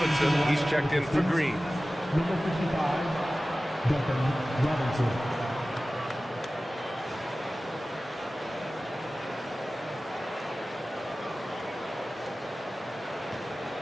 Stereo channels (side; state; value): both; normal; correlation 0.96